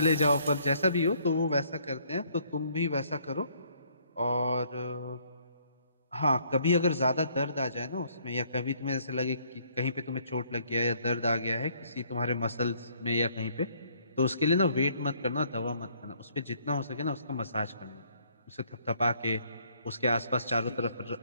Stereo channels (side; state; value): both; inverted; correlation -0.65